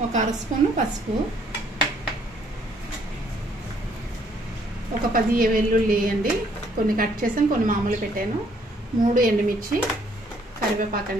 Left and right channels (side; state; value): both; normal; correlation 0.66